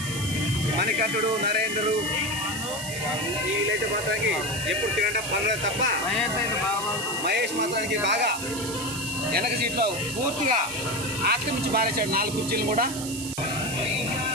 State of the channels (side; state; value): right; noise; hiss, 8 dB below the sound